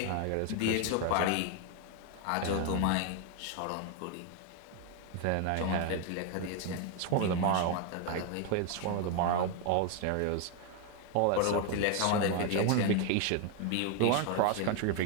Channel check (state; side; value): different; both; correlation 0.01